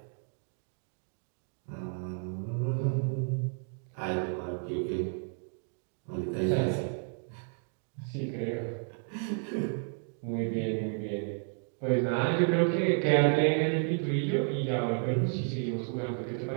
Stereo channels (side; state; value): left; silent; 56 dB below the other